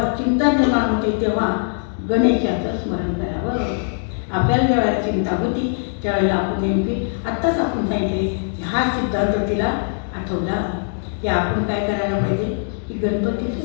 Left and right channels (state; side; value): silent; right; digital silence